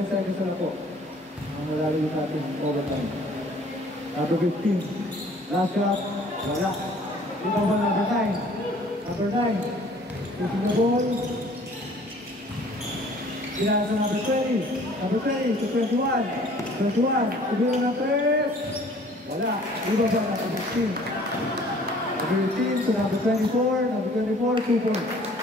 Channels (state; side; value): normal; both; correlation 0.53